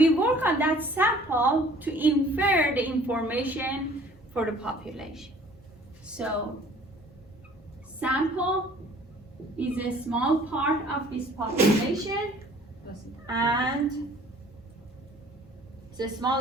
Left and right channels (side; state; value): both; normal; correlation 0.53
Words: work on that sample to infer the information for the population. So sample is a small part of this population, and it's a